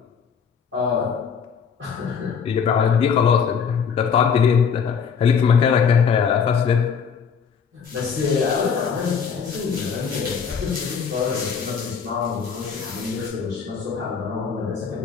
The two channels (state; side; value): quieter; right; 6.5 dB